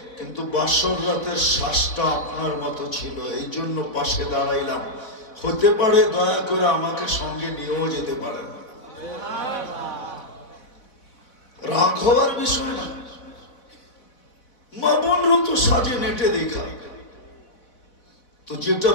কিন্তু বাসর রাতের শ্বাসটা আপনার মতো ছিল, এই জন্য পাশে দাঁড়াইলাম। হতে পারে দয়া করে আমাকে সঙ্গে নিয়েও যেতে পারেন। রাগ হওয়ার বিষয় না। মা বোনরা তো সাজে নেটে দেখা। তো যেটা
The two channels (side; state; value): right; late; 4.0 ms